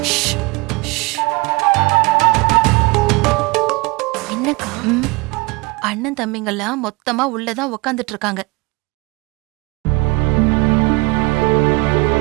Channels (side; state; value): left; quieter; 24.5 dB